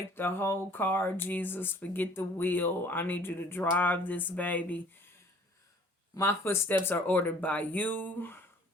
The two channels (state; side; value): normal; both; correlation 0.53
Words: the whole car, Jesus, forget the wheel. I need you to drive this baby. My footsteps are ordered by you.